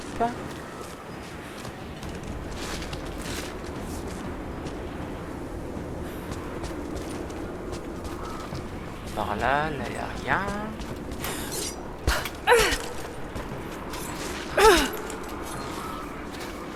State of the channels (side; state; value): both; identical; correlation 1.00